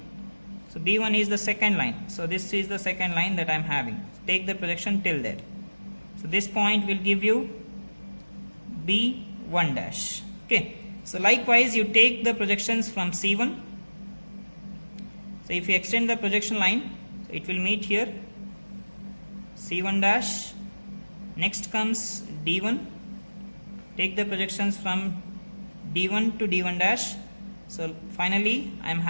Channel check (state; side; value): inverted; both; correlation -1.00